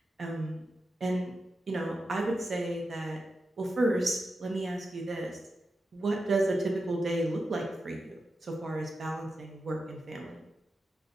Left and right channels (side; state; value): both; normal; correlation 0.90